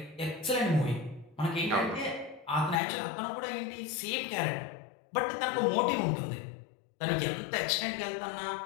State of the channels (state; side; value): drops out; right; at 2.8 s